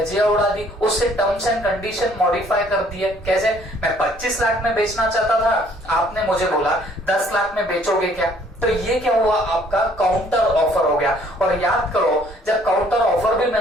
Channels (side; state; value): both; normal; correlation 0.60